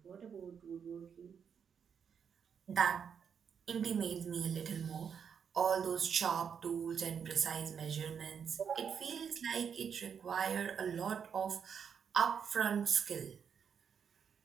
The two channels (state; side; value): quieter; left; 7.2 dB